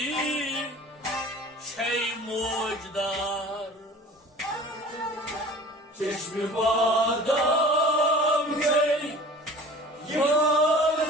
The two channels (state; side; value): normal; both; correlation 0.43